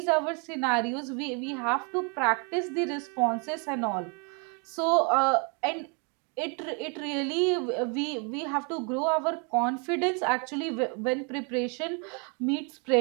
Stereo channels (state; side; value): quieter; left; 35.5 dB